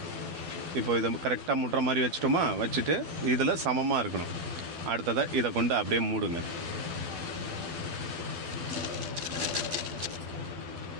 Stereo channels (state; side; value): late; left; 12 ms